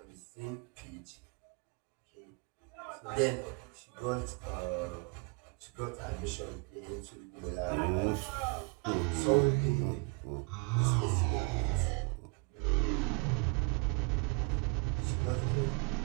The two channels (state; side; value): quieter; left; 32.6 dB